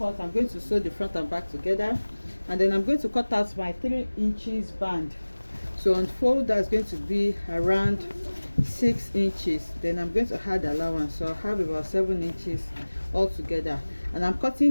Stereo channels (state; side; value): inverted; both; correlation -1.00